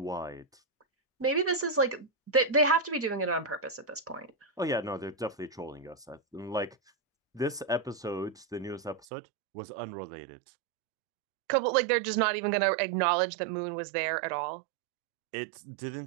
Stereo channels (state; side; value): drops out; left; at 9.1 s